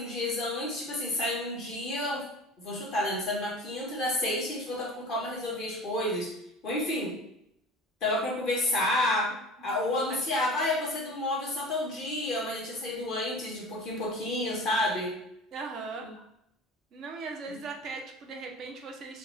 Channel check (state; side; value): normal; both; correlation 0.37